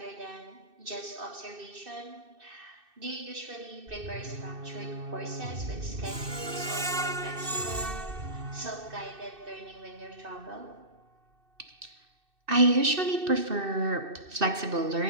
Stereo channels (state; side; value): late; left; 2.6 ms